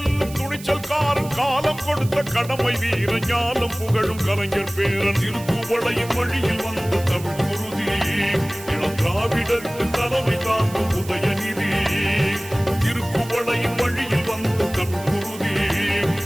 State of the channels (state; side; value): noise; right; hiss, 17 dB below the sound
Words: துணிச்சல்காரன் காலம் கொடுத்த கடமை வீரன் ஞானம் புகழும் கலைஞர் பேரன். திருப்புவளையின் வழியில் வந்த தமிழ் குருதி இளம் திராவிடருக்கு தலைமை தாங்கும் உதயநிதி. திருப்புவளையின் வழியில் வந்த தமிழ் குருதி